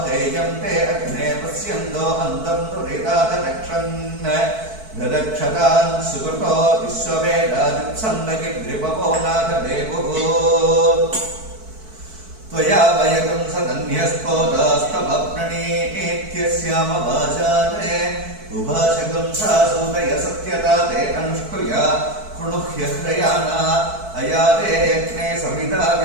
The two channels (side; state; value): left; late; 4.6 ms